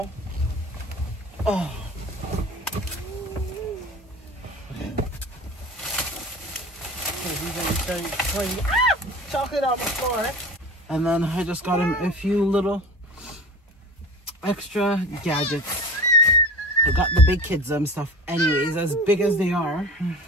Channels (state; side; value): normal; both; correlation 0.35